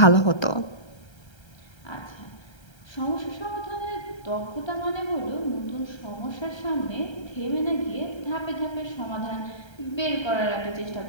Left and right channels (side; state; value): right; late; 1.3 ms